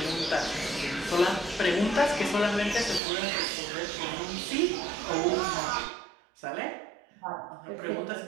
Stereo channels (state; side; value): drops out; left; at 3.0 s